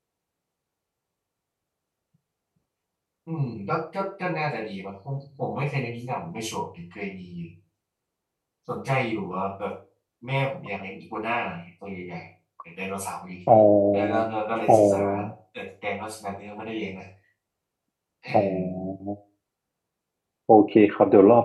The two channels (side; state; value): both; identical; correlation 1.00